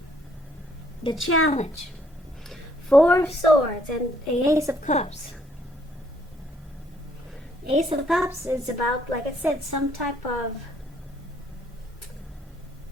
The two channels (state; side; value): normal; both; correlation 0.67